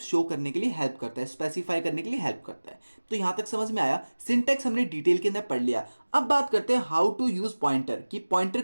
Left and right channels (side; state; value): both; inverted; correlation -1.00